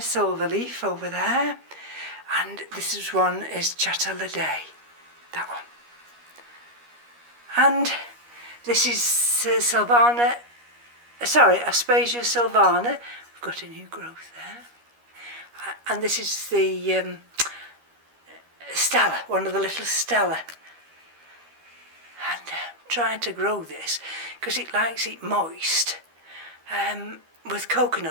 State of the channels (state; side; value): late; left; 13 ms